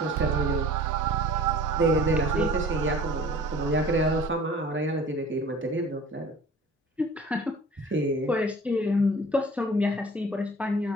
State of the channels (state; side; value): normal; both; correlation 0.46